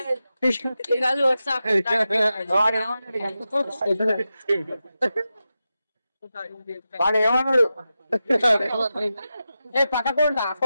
వాడు ఏమన్నాడు పక్కకుండా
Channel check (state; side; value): inverted; both; correlation -0.91